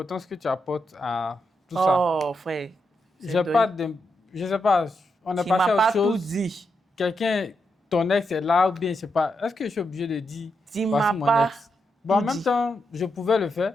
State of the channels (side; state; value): both; normal; correlation 0.83